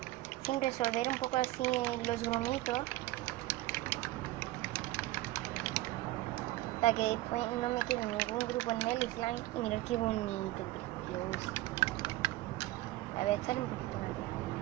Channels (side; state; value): left; quieter; 17.5 dB